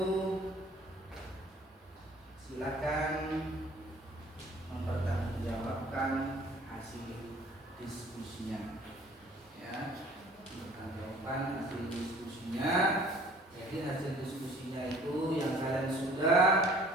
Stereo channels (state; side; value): normal; both; correlation 0.52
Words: silakan mempertanggungjawabkan hasil diskusinya. Ya, mempertanggungjawabkan hasil diskusinya. Jadi hasil diskusinya itu yang kalian sudah